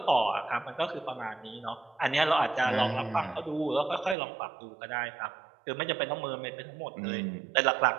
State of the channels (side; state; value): left; drops out; at 4.2 s